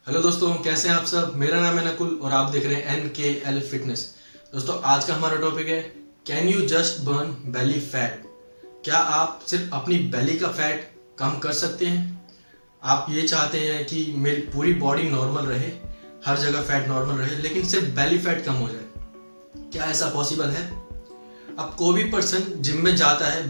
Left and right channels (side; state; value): both; inverted; correlation -1.00